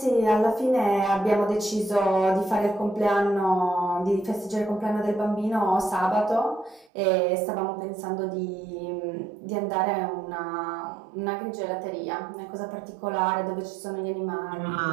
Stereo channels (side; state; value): left; drops out; at 6.9 s